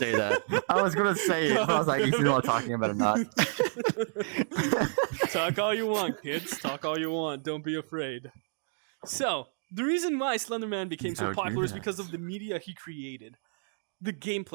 that. I was going to say it, but I was like, you see what I'm talking about or not? Talk all you want, kids. Talk all you want. Don't be afraid. So, the reason why Slenderman became so Don't do popular is that. because of the media he created. The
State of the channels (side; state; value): left; silent; digital silence